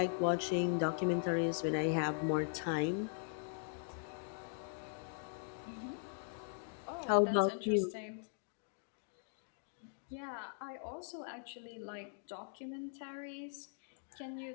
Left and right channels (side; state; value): right; silent; digital silence